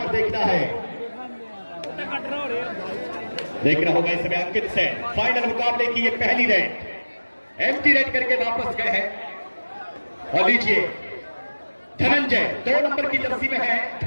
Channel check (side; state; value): both; inverted; correlation -1.00